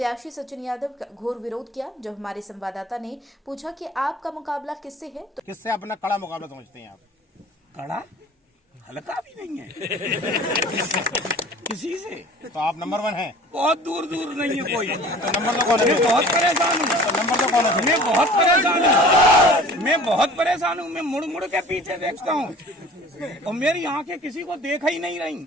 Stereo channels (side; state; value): both; normal; correlation 0.46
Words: सचिन यादव का घोर विरोध किया। जब हमारे संवाददाता ने पूछा कि आपका मुकाबला किससे है, तो किससे अपना कड़ा मुकाबला समझते हैं आप? कड़ा हल्का भी नहीं है किसी से। तो आप नंबर 1 हैं? बहुत दूर दूर नहीं है कोई। तो नंबर तो कौन है? मैं बहुत परेशान हूँ। तो नंबर तो कौन है? मैं बहुत परेशान हूँ। मैं बहुत परेशान हूँ। मैं मुड़ मुड़ के पीछे देखता हूँ और मेरी आंखें किसी को देख ही नहीं